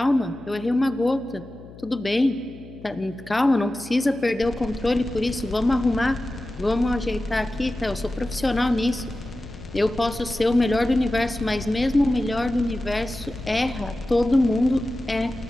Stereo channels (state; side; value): noise; left; hum, 18 dB below the sound